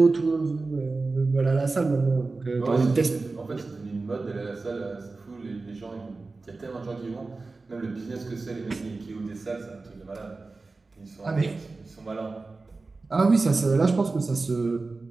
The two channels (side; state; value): left; quieter; 3.7 dB